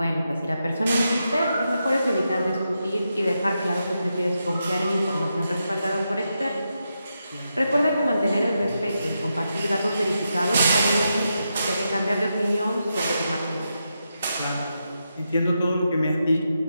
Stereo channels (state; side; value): inverted; both; correlation -0.86